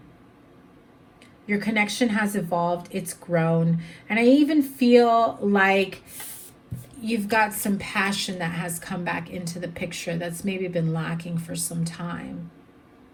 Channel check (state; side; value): identical; both; correlation 1.00